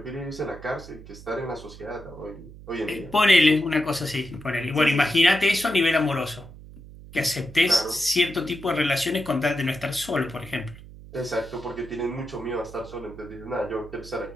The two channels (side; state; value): right; noise; hum, 17 dB below the sound